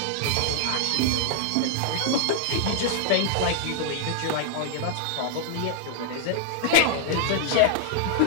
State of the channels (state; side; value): different; both; correlation -0.01